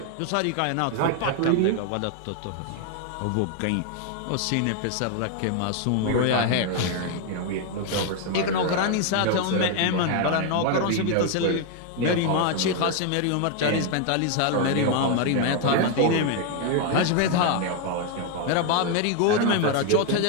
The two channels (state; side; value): different; both; correlation 0.01